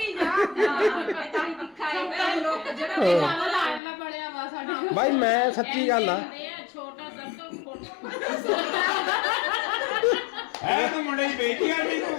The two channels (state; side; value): drops out; right; at 3.8 s